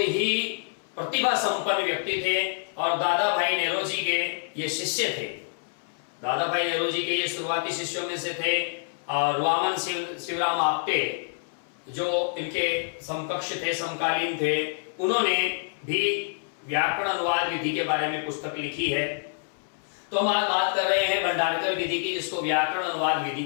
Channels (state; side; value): silent; right; 60 dB below the other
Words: प्रतिभा संपन्न व्यक्ति थे और दादा भाई नेरोजी के ये शिष्य थे। दादा भाई नेरोजी के ये शुरुआती शिष्यों में से थे। और वामन शिवराम आपटे जो इनके समकक्ष थे, समकालीन थे, उन्होंने भी व्याकरण अनुवाद विधि के बारे में पुस्तक लिखी है। तो हम आज बात कर रहे हैं भंडारकर विधि की, जिसको व्याकरण अनुवाद विधि